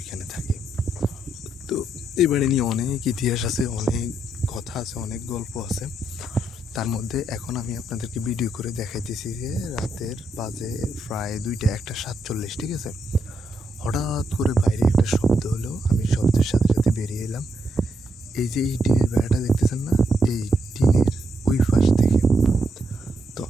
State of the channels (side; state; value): both; normal; correlation 0.79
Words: থাকি। তো এই বাড়ি নিয়ে অনেক ইতিহাস আছে, অনেক কথা আছে, অনেক গল্প আছে। তার মধ্যে এখন আমি আপনাদেরকে ভিডিও করে দেখাইতেছি যে রাতের বাজে প্রায় 1:47, ঠিক আছে? হঠাৎ করে বাইরে একটা শব্দ হলো, আমি শব্দের সাথে সাথে বেরিয়ে এলাম। এই যে এই টিনের বেড়াটা দেখতেছেন না, এই টিনের ওই পাশ থেকে। তো